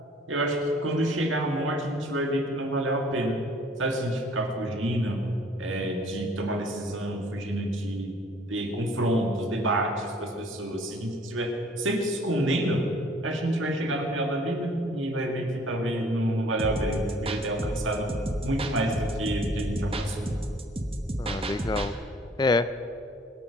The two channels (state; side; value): normal; both; correlation 0.56